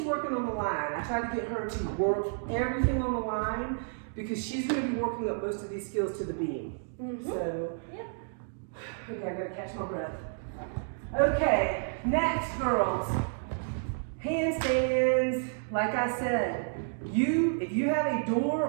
working on the line. I tried to get her to work everything on the line because she's gonna be working up most of these skills to the beam. So, okay, I gotta catch my breath. Okay, next, girls. Handstands. Like I said, if you have a door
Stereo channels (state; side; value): silent; left; digital silence